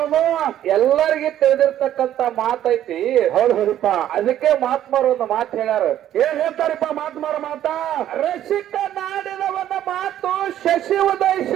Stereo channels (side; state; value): left; quieter; 11.7 dB